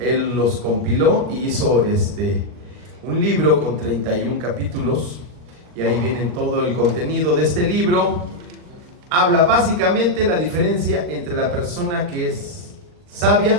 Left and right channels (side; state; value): left; late; 39 ms